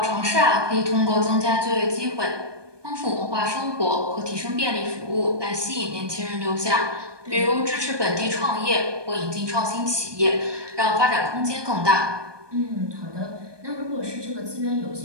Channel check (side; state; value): left; late; 1.2 ms